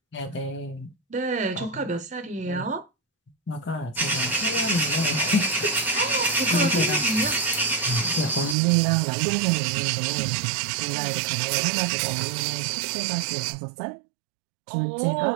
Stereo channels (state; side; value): drops out; left; at 8.6 s